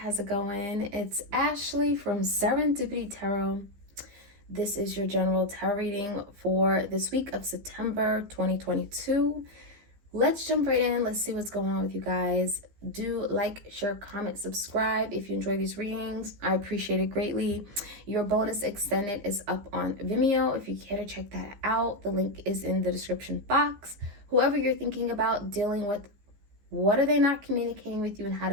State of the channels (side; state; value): left; late; 15 ms